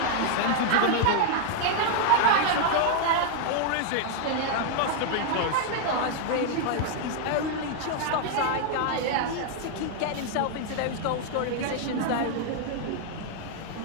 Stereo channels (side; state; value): both; different; correlation 0.00